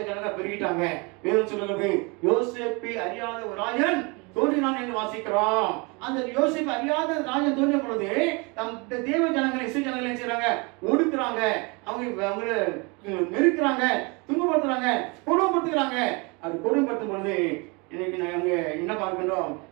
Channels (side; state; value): left; quieter; 29.3 dB